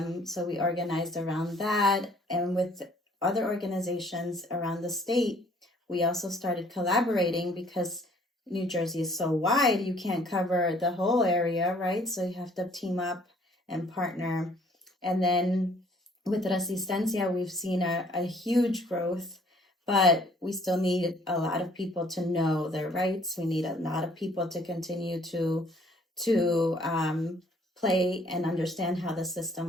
So we organized around that. And with other organizations around the state, we also started collaborating because New Jersey is so wide, you can't cover the whole area, right? So you have to team up and partner. And then with Resistencia, we've seen a huge growth, but we still need a lot of people to know their rights. We need a lot of people to continue to play and understand how the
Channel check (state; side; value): normal; both; correlation 0.59